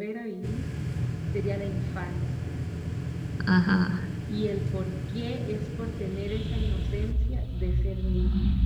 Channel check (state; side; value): identical; both; correlation 1.00